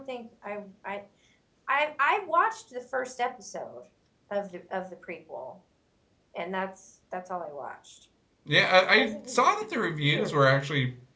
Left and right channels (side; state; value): both; identical; correlation 1.00